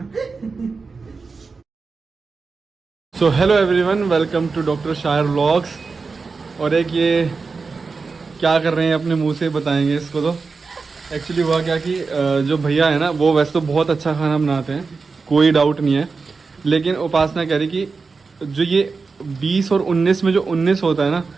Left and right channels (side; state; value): left; quieter; 4.5 dB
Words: So hello everyone, welcome to doctor Shayar vlogs. और एक ये क्या कर रहे हैं अपने मुंह से बताएंगे इसको। तो एक्चुअली हुआ क्या कि जो भैया है ना वो वैसे तो बहुत अच्छा खाना बनाते हैं, कोई डाउट नहीं है। लेकिन उपासना कह रही कि जो ये 20 और 19 में जो 19 होता है ना